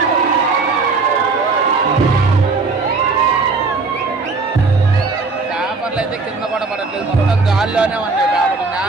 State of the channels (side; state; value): left; quieter; 4.1 dB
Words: పేపర్లు అయితే కింద కూడా పడట్లేదు, మొత్తం గాల్లోనే ఉన్నాయి. పేపర్లు